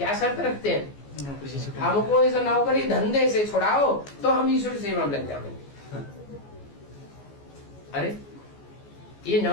शर्त रखते हैं? हमको इस नौकरी धंधे से छुड़ाओ तो हम ईश्वर सेवा में लग जाएंगे। अरे ये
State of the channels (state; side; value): late; right; 14 ms